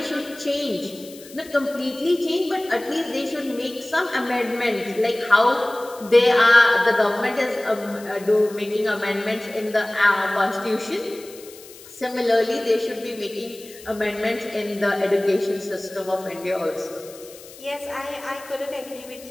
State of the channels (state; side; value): noise; left; hiss, 19 dB below the sound